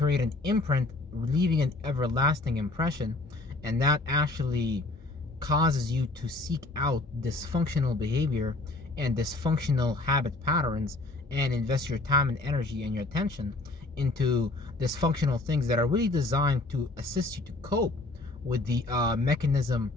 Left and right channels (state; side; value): quieter; right; 3.0 dB